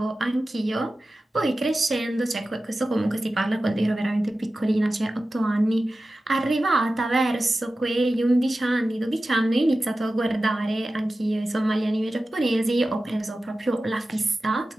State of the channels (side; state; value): both; normal; correlation 0.95